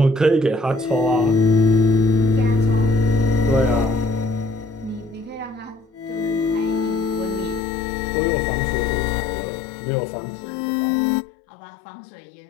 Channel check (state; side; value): drops out; right; at 7.6 s